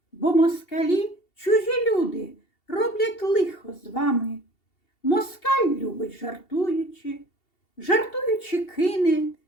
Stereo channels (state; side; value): late; right; 2.7 ms